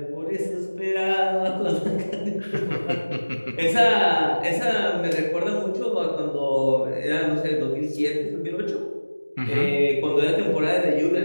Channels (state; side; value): inverted; both; correlation -1.00